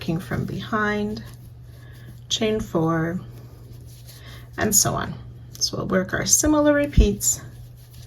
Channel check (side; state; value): both; identical; correlation 1.00